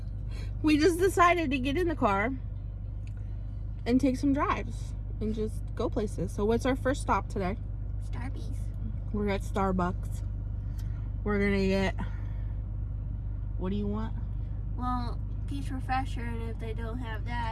We just decided to get in the car and take some drives and just go places. So what's our first stop today? Starbucks. We're at Starbucks. We're gonna get, what do you want? Well, peach refresher, and if they don't have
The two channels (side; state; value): both; identical; correlation 1.00